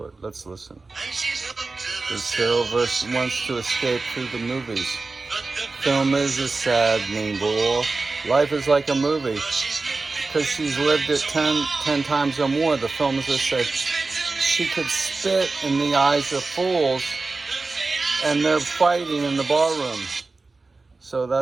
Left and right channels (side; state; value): left; quieter; 3.7 dB